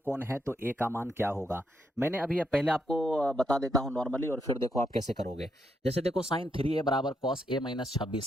है तो a का मान क्या होगा। मैंने अभी पहले आपको बता देता हूं नॉर्मली और फिर देखो आप कैसे करोगे। जैसे देखो साइन 3a बराबर कॉस a माइनस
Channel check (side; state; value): both; normal; correlation 0.78